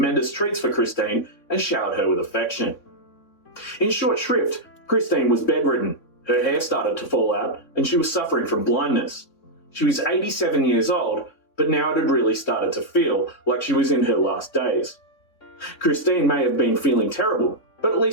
treats for Christine and showered her with affection. In short shrift, Christine was bedridden, her hair started to fall out, and she was suffering from blindness. She was 87 years old, but now it had really started to feel like she was in her last days. Christine may have been feeling terrible, but at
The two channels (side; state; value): right; late; 3.6 ms